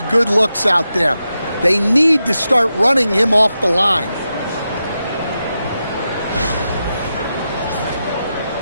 good looks out there. They need to start running him off the line.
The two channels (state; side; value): inverted; both; correlation -0.89